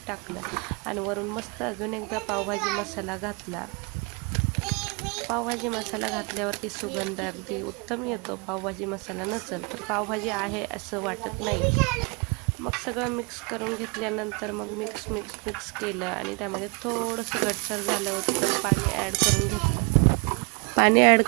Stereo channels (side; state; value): left; quieter; 32.6 dB